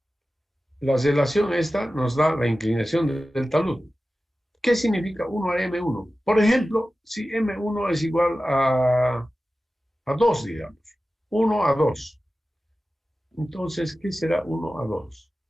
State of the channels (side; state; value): both; normal; correlation 0.95